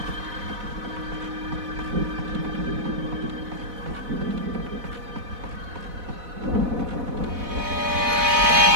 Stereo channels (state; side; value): late; left; 4.1 ms